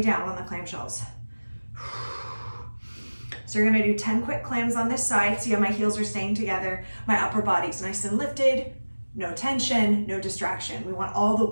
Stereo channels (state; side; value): inverted; both; correlation -1.00